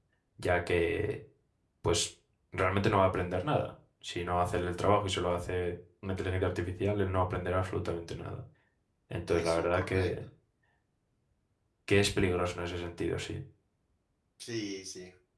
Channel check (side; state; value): both; identical; correlation 1.00